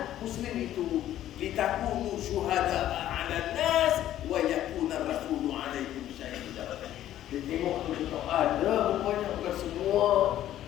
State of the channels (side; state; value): right; quieter; 12.4 dB